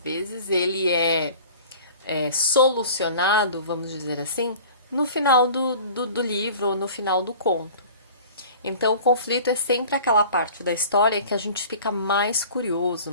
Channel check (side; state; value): both; inverted; correlation -0.43